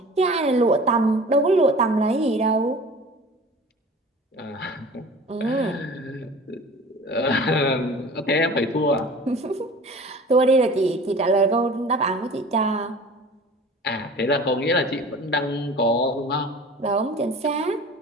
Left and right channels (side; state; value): both; normal; correlation 0.41